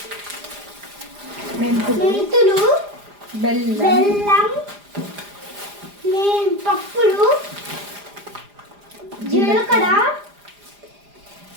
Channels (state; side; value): late; left; 4.9 ms